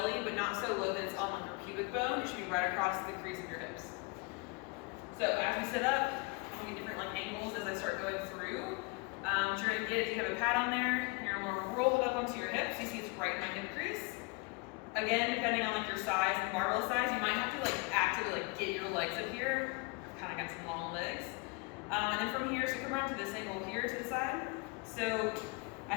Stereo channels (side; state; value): right; quieter; 28.5 dB